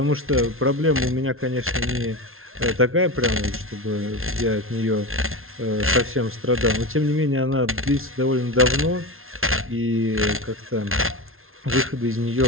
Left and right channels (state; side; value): late; left; 0.61 ms